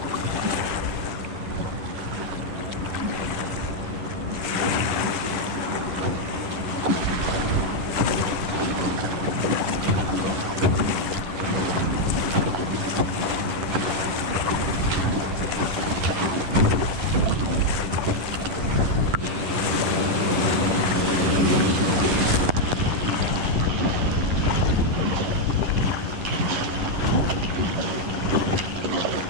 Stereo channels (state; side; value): late; left; 11 ms